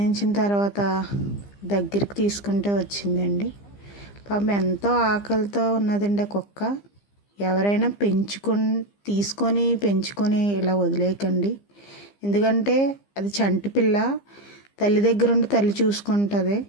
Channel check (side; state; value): right; late; 15 ms